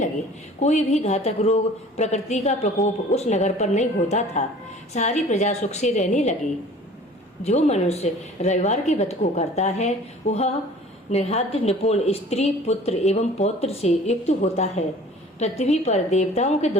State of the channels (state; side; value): normal; both; correlation 0.47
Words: कोई भी घातक रोग, प्रकृति का प्रकोप उस नगर पर नहीं होता था। सारी प्रजा सुख से रहने लगी। जो मनुष्य रविवार के व्रत को करता है वह निहाद्य निपुण स्त्री, पुत्र एवं पौत्र से युक्त होता है। पृथ्वी पर देवताओं के